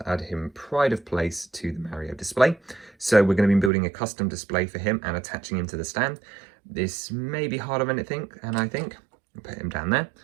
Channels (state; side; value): drops out; left; at 3.7 s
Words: add him pride of place to the Mario display. So we're going to be building a custom display for him and attaching him to the stand. This may be harder than I think, and I think I'll put him down there.